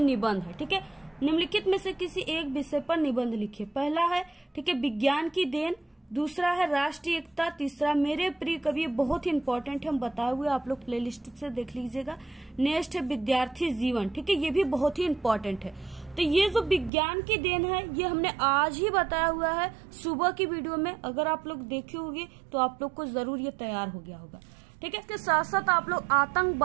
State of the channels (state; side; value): drops out; left; at 16.9 s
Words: है, ठीक है। निम्नलिखित में से किसी एक विषय पर निबंध लिखिए। पहला है, ठीक है, विज्ञान की देन, दूसरा है राष्ट्रीय एकता, तीसरा मेरे प्रिय कवि, बहुत ही इंपॉर्टेंट है, हम बताए हुए, आप लोग प्लेलिस्ट से देख लीजिएगा। नेक्स्ट है विद्यार्थी जीवन, ठीक है, ये भी बहुत ही इंपॉर्टेंट है। तो ये जो विज्ञान की देन है ये हमने आज ही बताया हुआ है सुबह की वीडियो में, अगर आप लोग देखे होंगे तो आप लोग को जरूर ये तैयार हो गया होगा, ठीक है। इसके साथ साथ आप लोग